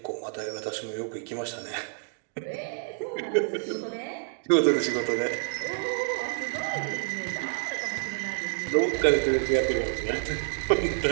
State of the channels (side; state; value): left; silent; 59 dB below the other